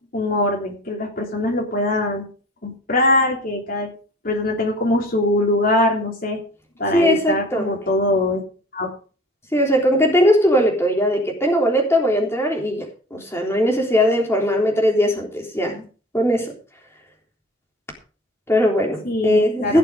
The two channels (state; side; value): normal; both; correlation 0.47